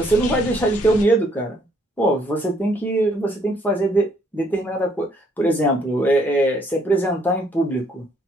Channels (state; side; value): normal; both; correlation 0.67